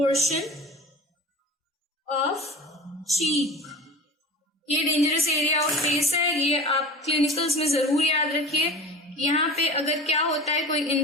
of cheek। ये डेंजरस एरिया ऑफ फेस है। ये आप क्लिनिकल्स में जरूर याद रखिए। यहाँ पे अगर क्या होता है, कोई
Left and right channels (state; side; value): normal; both; correlation 0.35